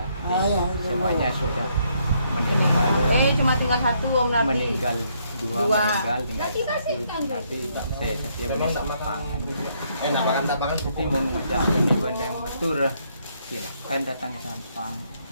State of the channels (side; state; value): both; inverted; correlation -0.72